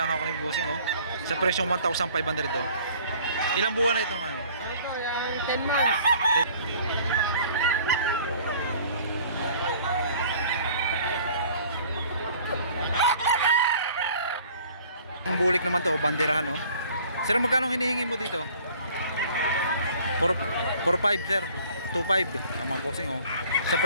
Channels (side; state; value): both; inverted; correlation -0.52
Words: ako ng busing, oh. Sa presyong 1,500, oh. Ilang buwan na ito ngayon? Ito, yung 10 months. Ang bulik naman to, banderahan, oh. Sir, magkano hinihingi mo dito? 4,500, sir. 2,500. Ang mga bossing, oh. Sa